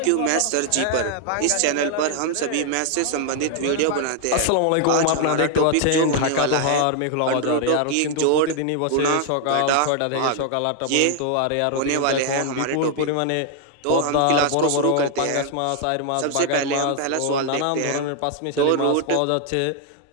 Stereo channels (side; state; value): both; different; correlation 0.00